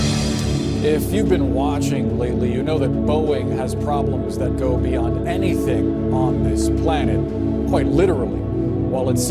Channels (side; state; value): both; identical; correlation 1.00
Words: If you've been watching lately, you know that Boeing has problems that go beyond anything on this planet, quite literally. While its